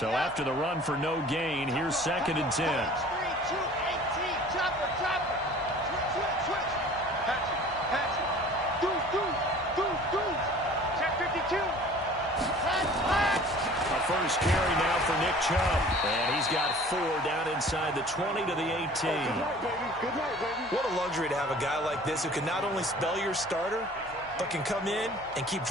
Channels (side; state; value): right; noise; hum, 22 dB below the sound